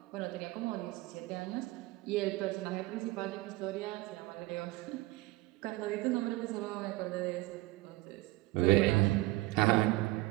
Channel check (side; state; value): left; quieter; 20.1 dB